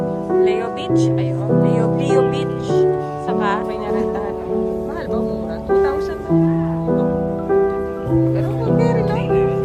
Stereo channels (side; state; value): both; identical; correlation 1.00